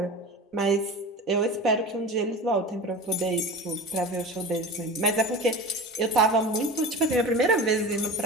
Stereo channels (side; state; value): both; normal; correlation 0.32